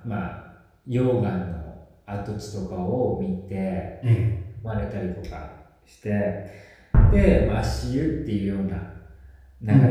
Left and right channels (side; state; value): both; identical; correlation 1.00